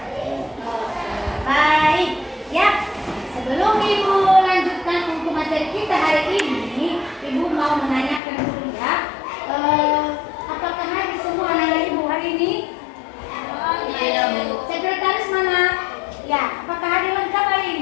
Baik, ya. Sebelum Ibu lanjutkan untuk materi kita hari ini, Ibu mau menanyakan dulu ya. Apakah hadir semua anak-anak Ibu hari ini? Tidak, Bu. Sekretaris mana? Ya, apakah hadir lengkap hari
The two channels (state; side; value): drops out; right; at 8.2 s